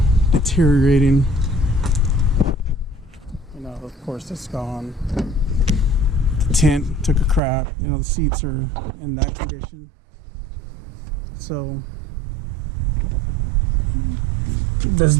deteriorating. You know, of course, it's gone. The tent took a crap. You know, the seats are in that condition. So this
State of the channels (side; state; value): left; drops out; at 7.4 s